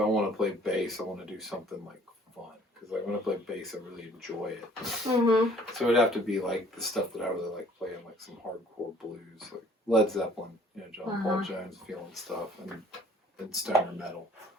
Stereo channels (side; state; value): both; normal; correlation 0.56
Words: want to play bass, I want to do something, like, fun. Because, like, when I play bass, I really enjoy it. Mm-hmm. So it would have to be, like, the stuff that I really like playing, like some hardcore blues, like Led Zeppelin, John Paul Jones feeling stuff, and stoner metal.